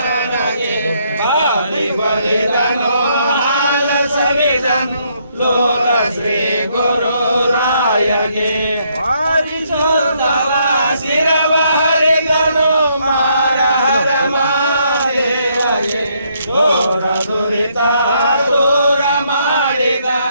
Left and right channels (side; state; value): both; inverted; correlation -0.72